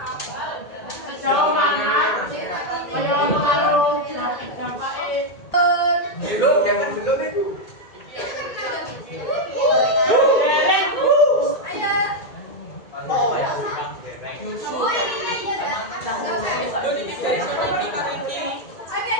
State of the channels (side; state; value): right; late; 2.1 ms